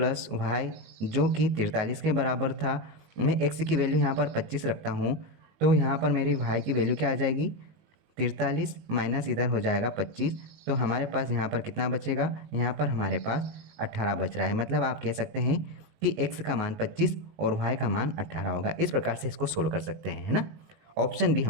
वाई जो कि 43 के बराबर था, मैं x की वैल्यू यहाँ पर 25 रखता हूँ, तो यहाँ पर मेरी y की वैल्यू क्या आ जाएगी, 43 माइनस इधर हो जाएगा 25, तो हमारे पास यहाँ पर कितना बचेगा, यहाँ पर हमारे पास 18 बच रहा है। मतलब आप कह सकते हैं कि x का मान 25 और y का मान 18 होगा। इस प्रकार से इसको सोल्व कर सकते हैं, है ना। ऑप्शन बी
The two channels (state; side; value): late; left; 19 ms